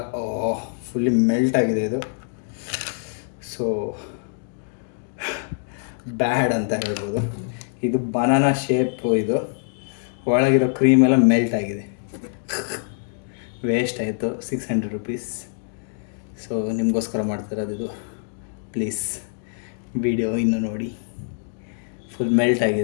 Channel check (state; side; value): silent; right; digital silence